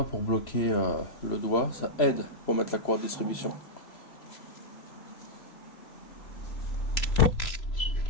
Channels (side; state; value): right; late; 3.0 ms